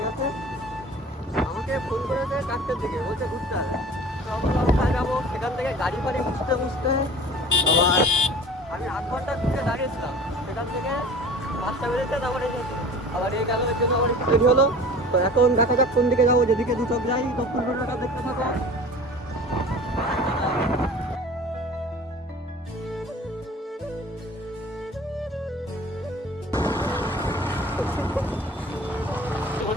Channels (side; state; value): both; normal; correlation 0.42